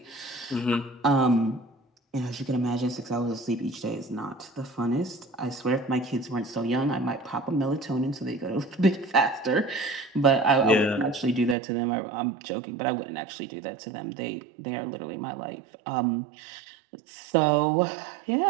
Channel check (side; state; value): left; drops out; at 11.6 s